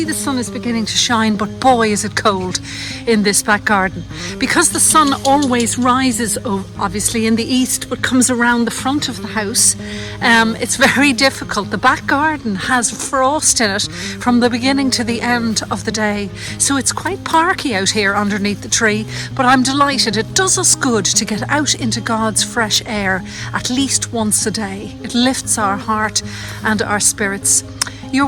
the sun is beginning to shine, but boy is it cold in this back garden. Because the sun always rises, obviously in the east, but comes around the front of the house, it's very difficult. The back garden has frost in it from the beginning to the end of the day. So it's quite parky out here underneath the tree, but I'm delighted. It does us good to get out into God's fresh air at least once a day. It lifts our heart and our spirits.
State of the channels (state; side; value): identical; both; correlation 1.00